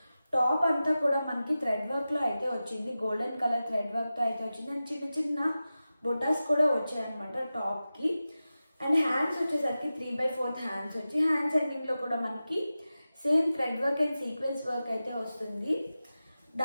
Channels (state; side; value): inverted; both; correlation -0.94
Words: టాప్ అంతా కూడా మనకి థ్రెడ్ వర్క్ లో అయితే వచ్చింది. గోల్డెన్ కలర్ థ్రెడ్ వర్క్ తో అయితే వచ్చింది. అండ్ చిన్న చిన్న బొటాస్ కూడా వచ్చాయి అనమాట టాప్ కి. అండ్ హ్యాండ్స్ వచ్చేసరికి 3/4 హ్యాండ్స్ వచ్చి, హ్యాండ్స్ ఎండింగ్ లో కూడా మనకి same thread work and sequence work అయితే వస్తుంది.